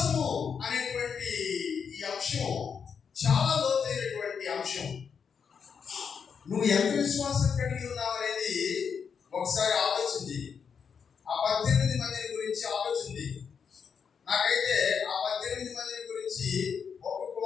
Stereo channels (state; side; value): quieter; right; 6.6 dB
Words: అనేటువంటి ఈ అంశం చాలా లోతైనటువంటి అంశం. నువ్వు ఎంత విశ్వాసం కలిగి ఉన్నావు అనేది ఒకసారి ఆలోచించి ఆ 18 మందిని గురించి ఆలోచించి, నాకైతే ఆ 18 మందిని గురించి ఒక్కొక్క